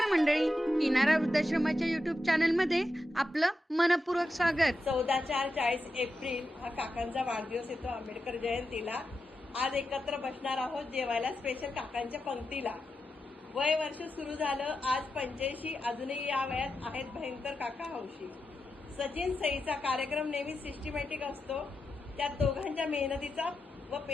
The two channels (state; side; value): normal; both; correlation 0.88